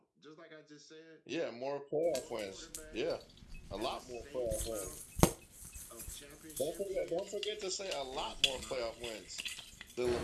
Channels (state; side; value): identical; both; correlation 1.00